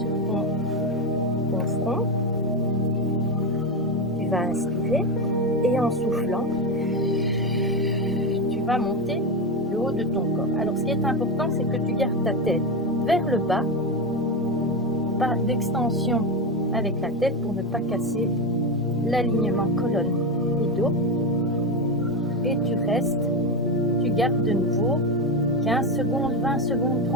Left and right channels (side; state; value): both; normal; correlation 0.15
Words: ton front. Tu vas inspirer et en soufflant, tu vas monter le haut de ton corps. Alors, ce qui est important, c'est que tu gardes ta tête vers le bas, pas d'extension avec la tête pour ne pas casser l'alignement colonne et dos. Et tu restes, tu gardes de nouveau 15 secondes, 20 secondes,